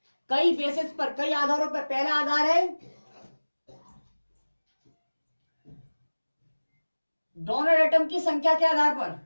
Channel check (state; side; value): inverted; both; correlation -1.00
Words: कई बेसिस पर, कई आधारों पर। पहला आधार है डोनर एटम की संख्या के आधार पर,